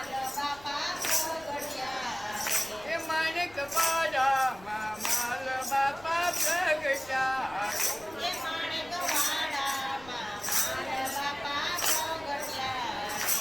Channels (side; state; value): left; noise; rumble, 22 dB below the sound